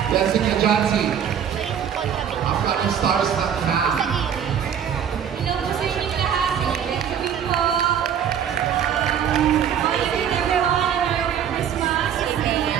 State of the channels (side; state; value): left; quieter; 8.7 dB